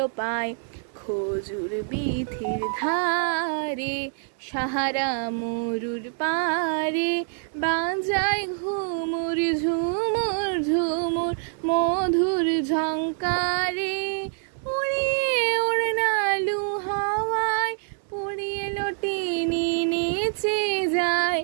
পায়। খজুর বিথির ধারে সাহারা মরুর পারে, বাজায় ঘুমুর ঝুমুর ঝুমুর মধুর ঝঙ্কারে। উড়িয়ে ওড়নালু হাওয়ায় পুড়িয়ে লটিনি নেচে যায়,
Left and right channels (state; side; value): silent; left; 61 dB below the other